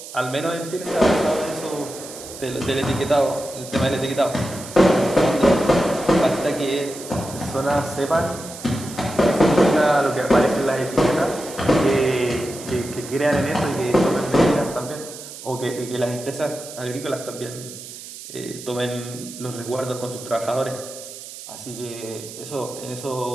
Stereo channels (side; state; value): right; noise; hiss, 13 dB below the sound